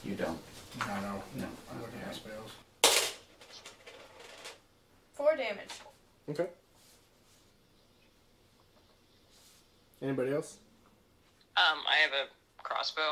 You don't. No. No. I'm looking at my spells. 4 damage. Okay. Anybody else? I have a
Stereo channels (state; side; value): identical; both; correlation 1.00